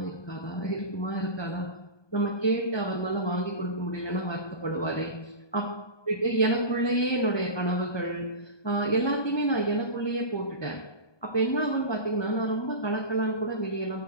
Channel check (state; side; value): late; right; 1.2 ms